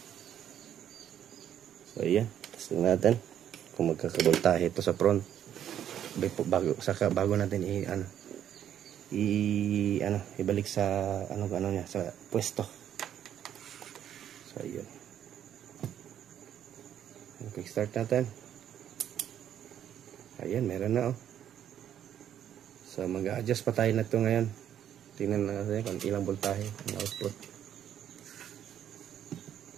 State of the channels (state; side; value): quieter; left; 10.1 dB